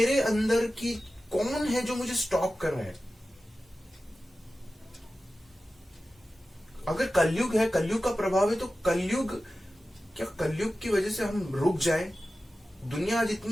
अंदर की कौन है जो मुझे स्टॉप कर रहा है? अगर कलयुग है, कलयुग का प्रभाव है, तो कलयुग की वजह से हम रुक जाएं? दुनिया आज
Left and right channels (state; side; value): normal; both; correlation 0.94